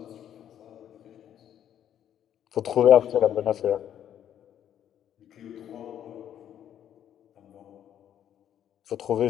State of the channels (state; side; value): quieter; right; 10.2 dB